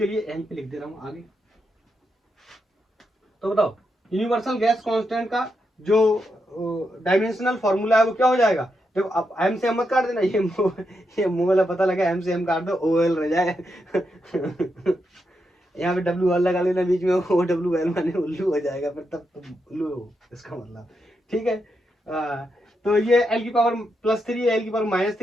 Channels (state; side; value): normal; both; correlation 0.84